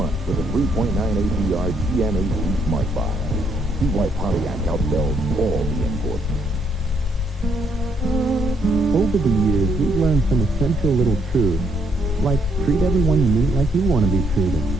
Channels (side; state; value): both; normal; correlation 0.72